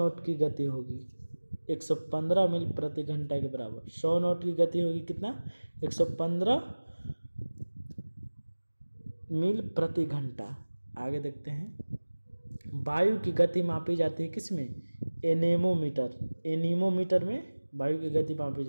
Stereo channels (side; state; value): both; inverted; correlation -1.00